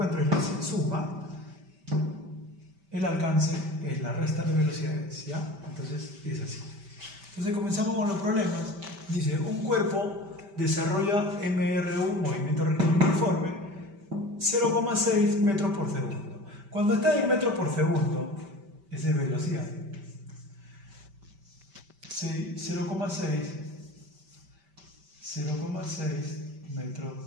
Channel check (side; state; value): left; late; 5.1 ms